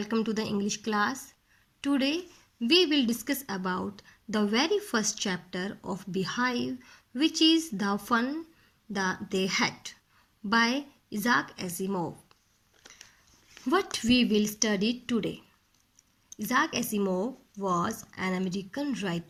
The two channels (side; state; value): both; identical; correlation 1.00